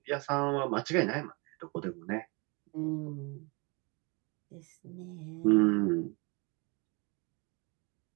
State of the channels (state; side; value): quieter; left; 29.8 dB